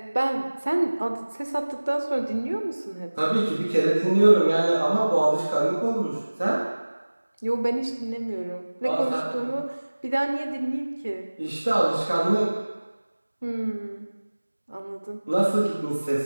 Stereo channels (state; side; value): inverted; both; correlation -1.00